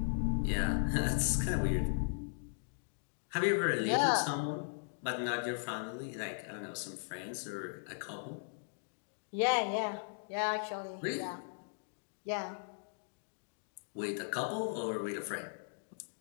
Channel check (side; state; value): right; silent; digital silence